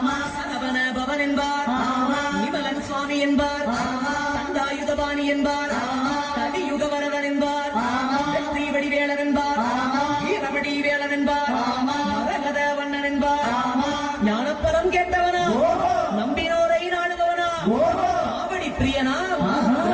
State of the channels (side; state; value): both; identical; correlation 1.00